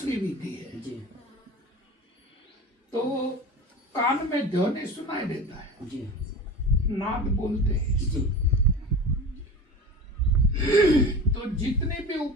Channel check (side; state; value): both; normal; correlation 0.33